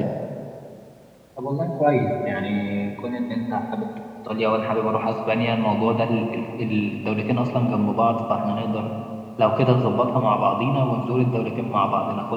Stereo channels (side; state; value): both; identical; correlation 1.00